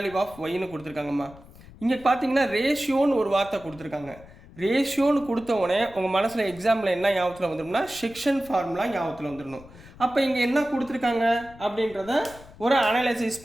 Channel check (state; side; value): noise; left; rumble, 21 dB below the sound